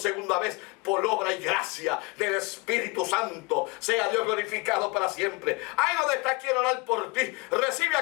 vez por obra y gracia del Espíritu Santo, sea Dios glorificado para siempre. Ahí donde está, quiero orar por ti. Recibe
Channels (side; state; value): right; quieter; 27.1 dB